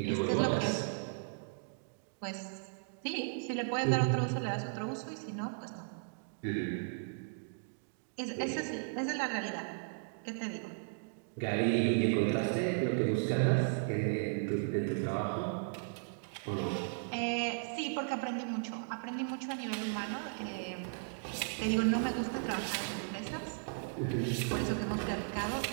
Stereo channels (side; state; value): left; silent; digital silence